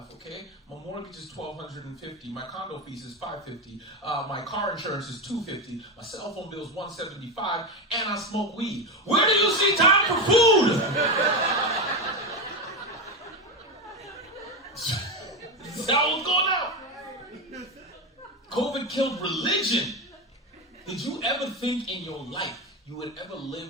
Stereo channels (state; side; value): normal; both; correlation 0.14